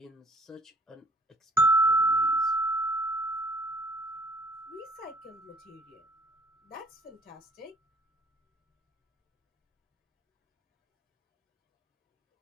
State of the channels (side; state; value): both; normal; correlation 0.56